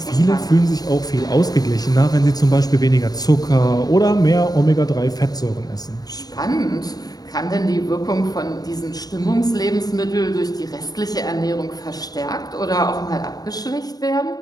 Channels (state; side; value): late; right; 0.19 ms